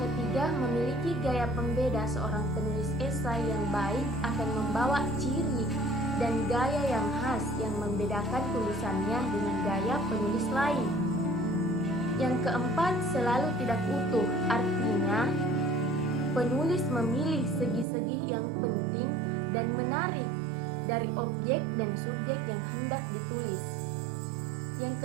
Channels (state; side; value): drops out; left; at 17.9 s